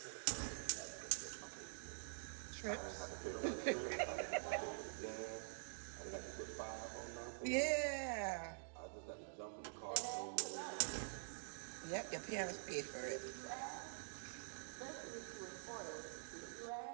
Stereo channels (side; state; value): left; silent; digital silence